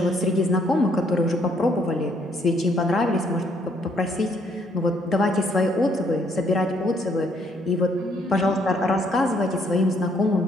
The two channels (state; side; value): normal; both; correlation 0.68